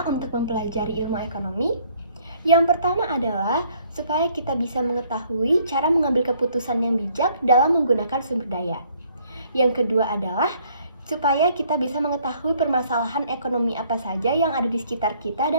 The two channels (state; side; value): inverted; both; correlation -0.63